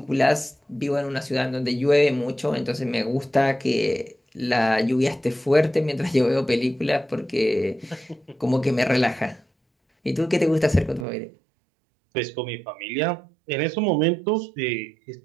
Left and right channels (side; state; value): left; drops out; at 11.1 s